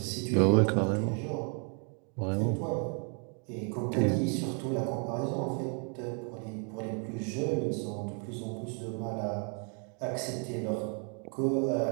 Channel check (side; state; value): left; quieter; 39.5 dB